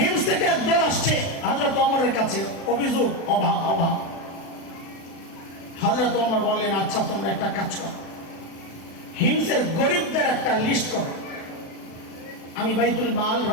থেকে একদল আসছে হযরত ওমরের কাছে, অভিযোগ অভাব অভাব। হযরত ওমর বললেন, আচ্ছা তোমরা একটা কাজ করো, হিমসের গরিবদের একটা লিস্ট করো, আমি বাইতুল মাল,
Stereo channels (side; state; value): right; late; 36 ms